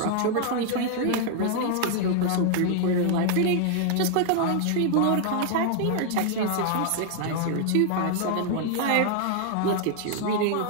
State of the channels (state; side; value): different; both; correlation 0.00